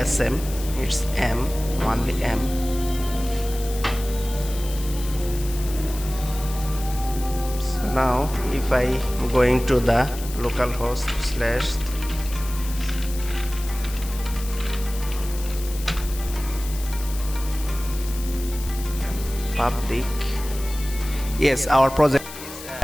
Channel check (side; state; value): left; noise; hiss, 13 dB below the sound